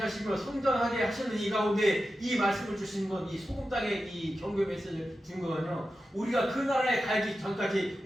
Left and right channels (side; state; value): both; normal; correlation 0.92